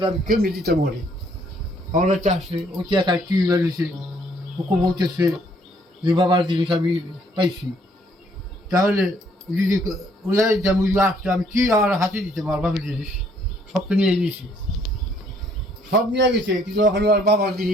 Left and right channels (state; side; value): normal; both; correlation 0.65